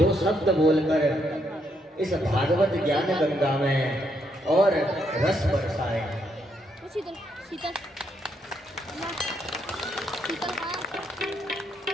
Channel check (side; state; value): both; normal; correlation 0.76